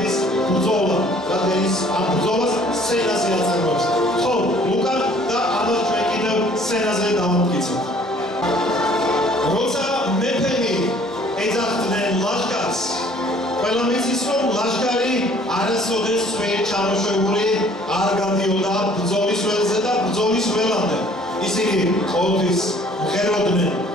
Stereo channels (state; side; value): normal; both; correlation 0.56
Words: ბრძოლა, რადგან ის ამ ბრძოლას სცენაზე აწარმოებს. ხო, ლუკა და ამას ჩვენ კიდევ სცენაზე დავამტკიცებთ. როცა მეფენი ეძახდნენ ლაშქარს, ყველა მიცის რომ ლაშქარი არასოდეს ვერ ჩამოშვებული არ გადიოდა ბრძოლის ველზე და ბრძოლის ველამდე. ისინი ყოველთვის მღეროდნენ,